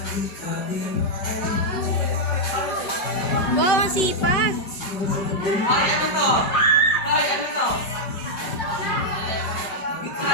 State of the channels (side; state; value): right; late; 5.3 ms